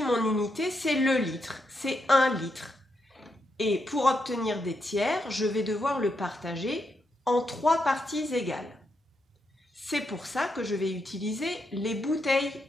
mon unité, c'est le litre, c'est 1 litre. Et pour obtenir des tiers, je vais devoir le partager en 3 parties égales. C'est pour ça que je vais utiliser les bouteilles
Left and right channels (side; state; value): both; normal; correlation 0.82